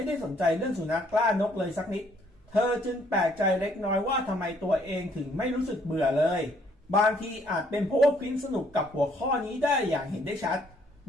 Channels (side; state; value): both; normal; correlation 0.65